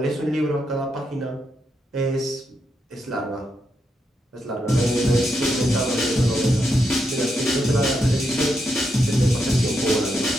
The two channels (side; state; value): both; normal; correlation 0.83